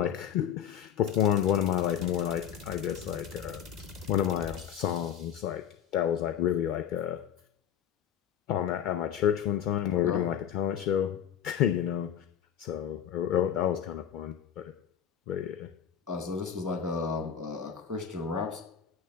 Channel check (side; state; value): right; quieter; 9.2 dB